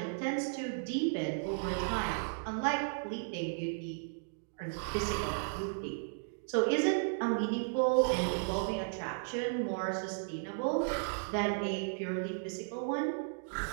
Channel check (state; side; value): silent; left; digital silence